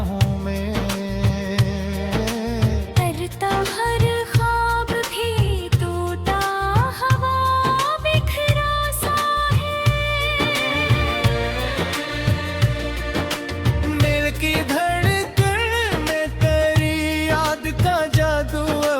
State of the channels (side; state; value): both; identical; correlation 1.00